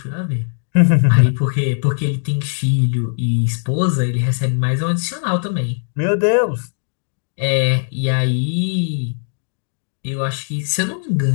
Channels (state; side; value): silent; right; digital silence